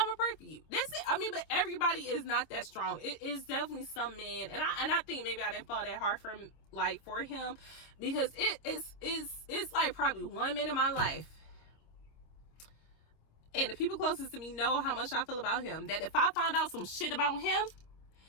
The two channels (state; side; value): late; right; 26 ms